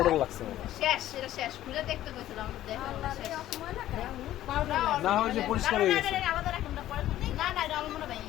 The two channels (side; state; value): right; quieter; 13.5 dB